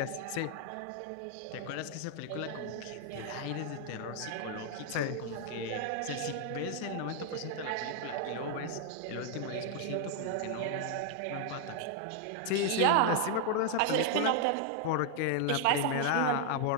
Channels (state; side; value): different; both; correlation 0.00